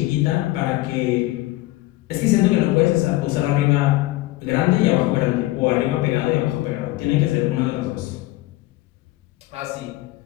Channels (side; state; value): right; quieter; 18.1 dB